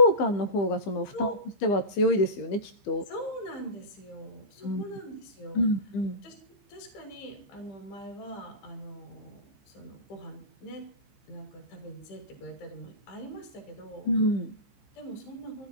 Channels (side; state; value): right; late; 15 ms